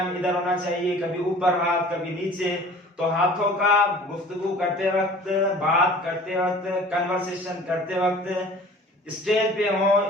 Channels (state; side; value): normal; both; correlation 0.46